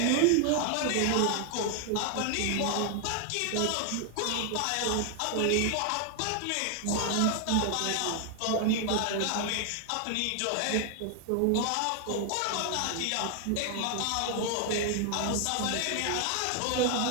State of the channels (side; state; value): both; different; correlation 0.00